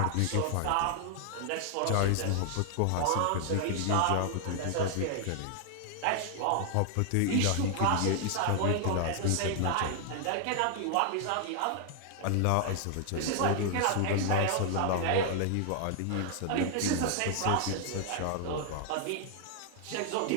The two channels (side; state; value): both; different; correlation 0.00